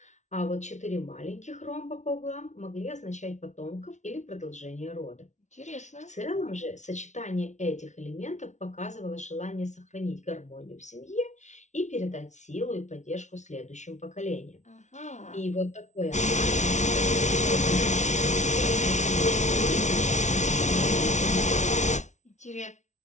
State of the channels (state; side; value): late; right; 0.34 ms